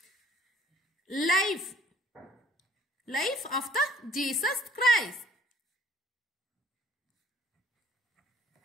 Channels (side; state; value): both; normal; correlation 0.59